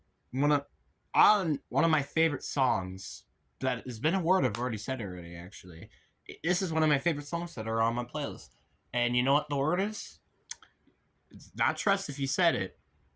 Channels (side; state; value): both; identical; correlation 1.00